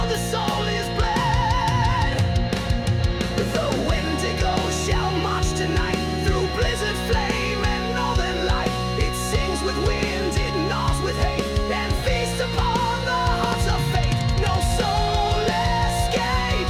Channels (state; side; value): identical; both; correlation 1.00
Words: the soul is bled. The Wendigo shall march tonight through blizzard, flame, and northern light. It sings with wind, it gnaws with hate, and feasts upon the hearts of fate. No soul